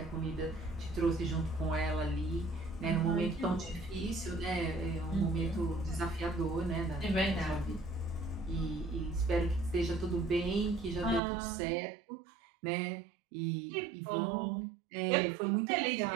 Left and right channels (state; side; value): drops out; left; at 11.2 s